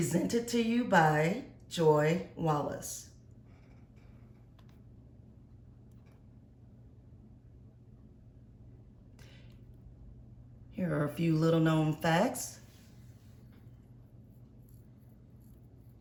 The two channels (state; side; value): identical; both; correlation 1.00